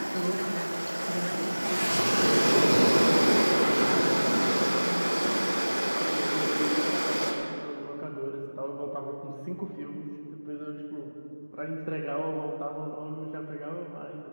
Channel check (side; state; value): both; inverted; correlation -1.00